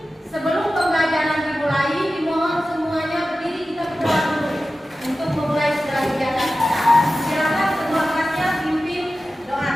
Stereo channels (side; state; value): both; normal; correlation 0.94